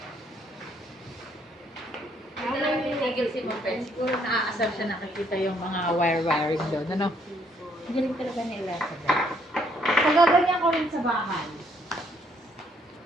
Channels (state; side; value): normal; both; correlation 0.68